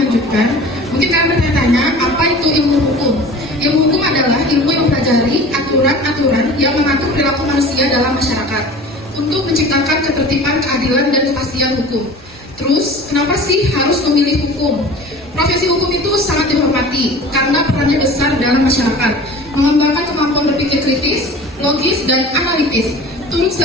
Mungkin kalian bertanya, apa itu ilmu hukum? Ilmu hukum adalah ilmu yang mempelajari aturan-aturan yang mengatur perilaku manusia dalam masyarakat untuk menciptakan ketertiban, keadilan, dan kepastian hukum. Terus, kenapa sih harus memilih hukum? Profesi hukum itu sangat dihormati karena perannya besar dalam masyarakat, mengembangkan kemampuan berpikir kritis, logis, dan analitis, turut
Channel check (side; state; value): both; normal; correlation 0.41